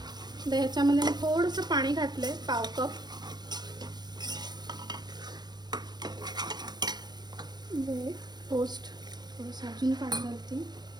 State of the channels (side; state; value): left; late; 0.20 ms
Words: आता ह्याच्यामध्ये मी थोडंसं पाणी घातलंय, पाव कप. टोस्ट थोडंसं अजून पाणी घालते.